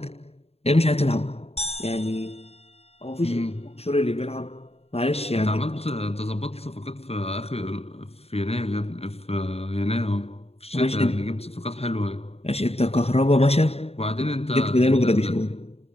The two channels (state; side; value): late; right; 0.29 ms